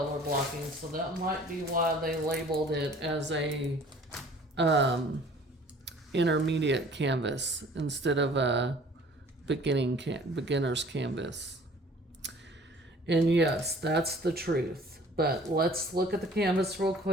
blocking. So that might be why they labeled it as a intermediate canvas instead of a beginner's canvas. And yes, that's the truth. But let's look at the canvas real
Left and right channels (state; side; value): normal; both; correlation 0.51